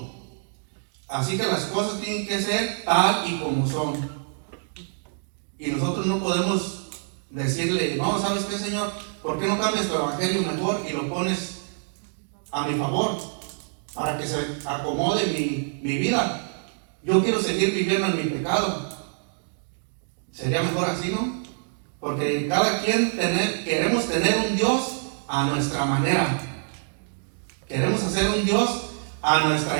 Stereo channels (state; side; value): silent; left; digital silence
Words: Así que las cosas tienen que ser tal y como son. Y nosotros no podemos decirle, no, ¿sabes qué, Señor? ¿Por qué no cambias tu evangelio mejor y lo pones a mi favor para que se acomode mi vida? Yo quiero seguir viviendo en mi pecado. Sería mejor así, ¿no? Porque cada quien queremos tener un Dios a nuestra manera. Queremos hacer un Dios a